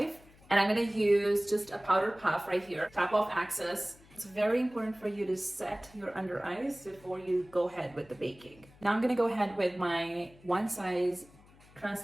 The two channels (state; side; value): noise; left; hum, 26 dB below the sound